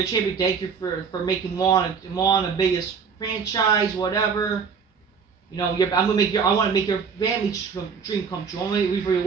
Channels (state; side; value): quieter; left; 6.0 dB